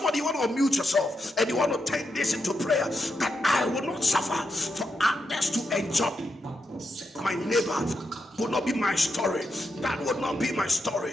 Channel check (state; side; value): normal; both; correlation 0.84